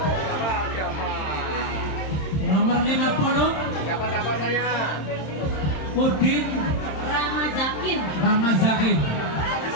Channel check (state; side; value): late; right; 26 ms